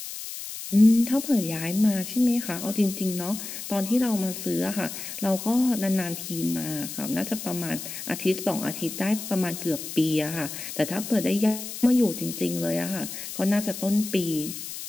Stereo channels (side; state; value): left; noise; hiss, 9 dB below the sound